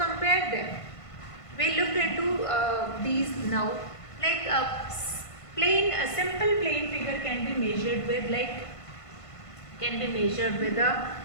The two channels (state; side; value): late; right; 1.5 ms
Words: them. We look into these now. Like a simple plane figure can be measured with the